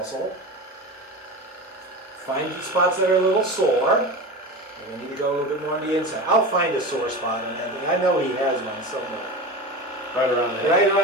Find the spots that are a little sore. And we need to go a little bit more on the inside. I'll find a sore spot on Anthony. I know he has one somewhere. Right around there. Right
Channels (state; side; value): normal; both; correlation 0.27